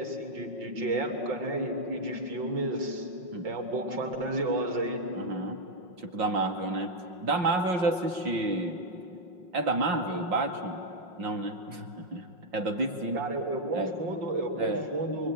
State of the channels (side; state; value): left; late; 5.5 ms